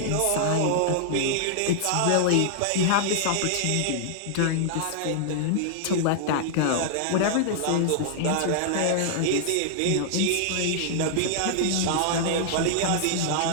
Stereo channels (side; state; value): both; different; correlation -0.01